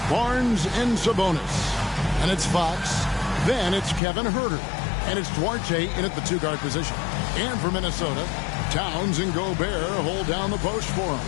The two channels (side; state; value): right; drops out; at 4.0 s